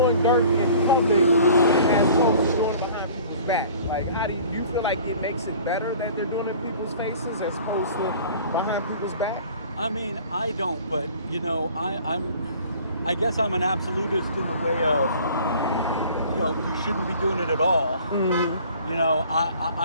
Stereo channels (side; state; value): both; inverted; correlation -0.48